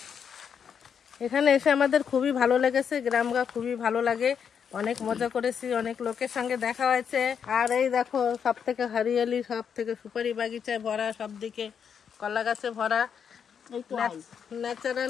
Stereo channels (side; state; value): right; quieter; 7.4 dB